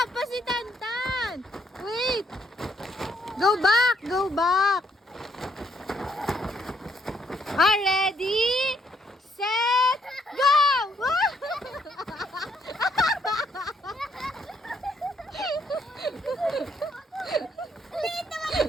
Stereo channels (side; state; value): both; normal; correlation 0.71